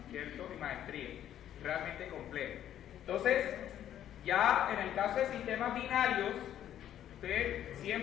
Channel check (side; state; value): right; quieter; 11.0 dB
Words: ¿cierto? Y maestría. Realmente complejo. Entonces, ya en el caso de sistemas binarios,